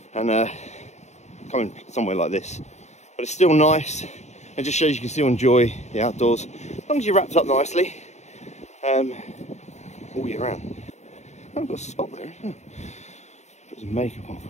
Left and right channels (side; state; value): right; late; 0.33 ms